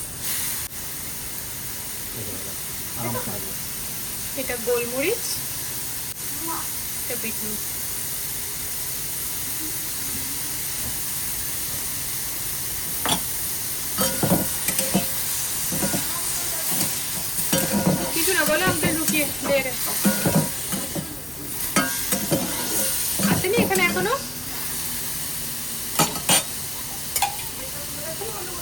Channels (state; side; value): noise; left; hum, 21 dB below the sound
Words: এটা গোলমরিচ, এটা বিট নুন। কিছু না বলো, আমাকে লুকিয়ে দেখে আসেনি এখানে এখনো।